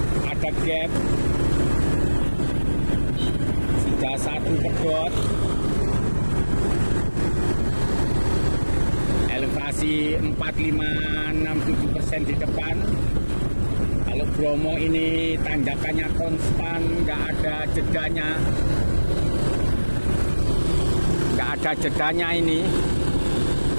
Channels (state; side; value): inverted; both; correlation -1.00